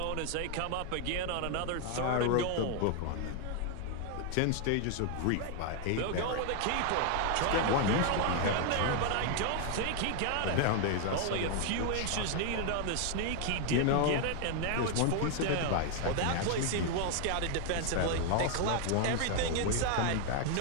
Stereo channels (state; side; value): different; both; correlation 0.00